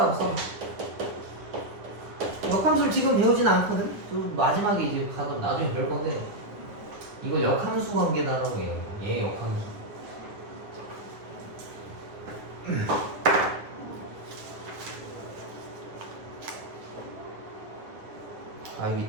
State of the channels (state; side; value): late; left; 9.8 ms